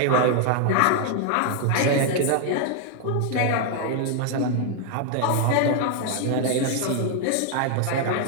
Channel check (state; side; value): different; both; correlation 0.00